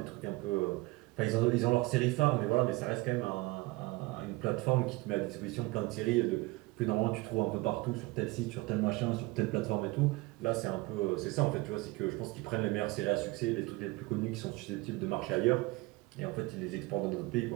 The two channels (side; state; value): left; quieter; 22.4 dB